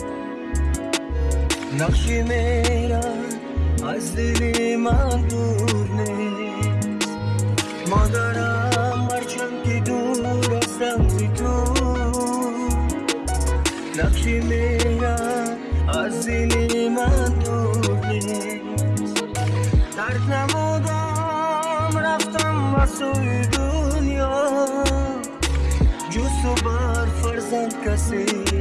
نقشی میرم از دل من دور نیست. مادرم هرچند که دور هستم ز تو، نقشی میرم از دل من دور نیست. ترک نمودم رفتم و سوی دنیا، جز تو بر فرزند کسی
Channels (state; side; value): identical; both; correlation 1.00